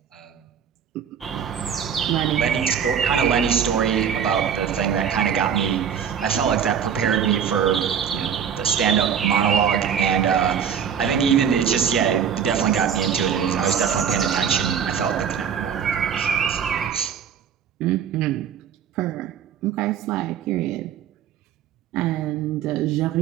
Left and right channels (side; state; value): left; quieter; 8.0 dB